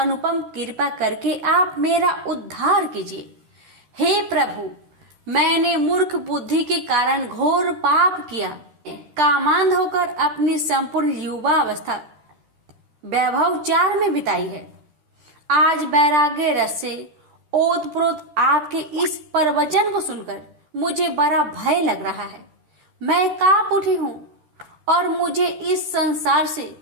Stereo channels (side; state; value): left; late; 13 ms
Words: कृपा करके आप मेरा उद्धार कीजिए। हे प्रभु, मैंने मूर्ख बुद्धि के कारण घोर पाप किया। कामांध होकर अपनी संपूर्ण युवा अवस्था वैभवचार में बिताई है। आज वैराग्य रस से ओतप्रोत आपके इस प्रवचन को सुनकर मुझे बड़ा भय लग रहा है। मैं कांप उठी हूँ और मुझे इस संसार से